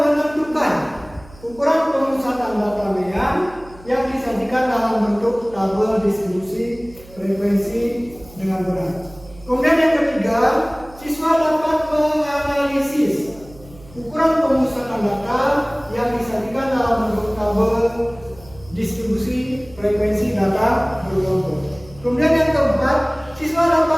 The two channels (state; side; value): noise; right; hum, 22 dB below the sound